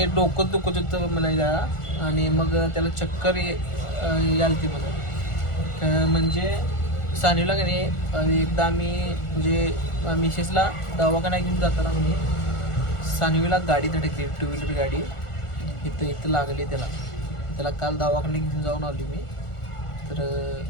डोकं दुखत होतं म्हणायला आणि मग त्याला चक्कर यालती मला. म्हणजे सानवीला का नाही एकदा आम्ही म्हणजे मिसेसला दवाखाना घेऊन जाताना म्हणजे सानवीला गाडी धडकली, 2 व्हीलर गाडी इथं लागली त्याला काल दवाखान्यात घेऊन जाऊन आली मी. तर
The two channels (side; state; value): right; late; 1.4 ms